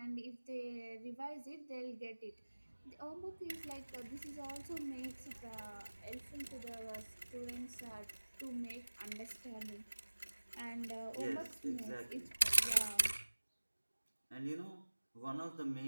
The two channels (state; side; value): inverted; both; correlation -1.00